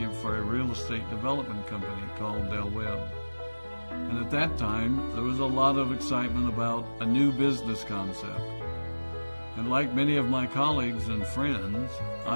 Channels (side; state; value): both; inverted; correlation -1.00